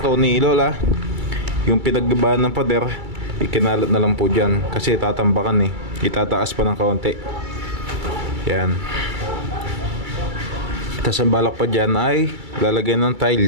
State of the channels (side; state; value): left; late; 2.3 ms